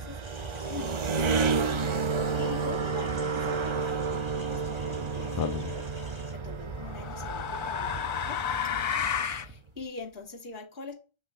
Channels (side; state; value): left; late; 1.3 ms